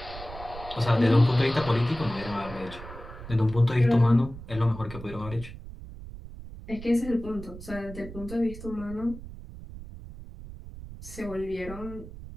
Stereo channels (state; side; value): noise; right; rumble, 13 dB below the sound